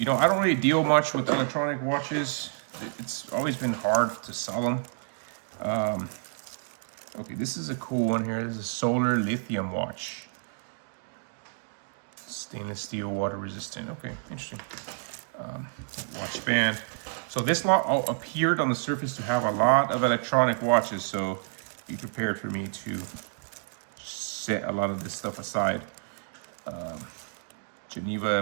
know, I don't really deal much with electronic watches. It's always been hard to sell them. Okay, this is a cool one here. This is a solar lithium watch. Stainless steel, water resistant. Okay, interesting. Watch band. So this lot appeared on the surface to have a lot of electronic watches, so be prepared for me to set a lot of this stuff aside.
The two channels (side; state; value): left; silent; digital silence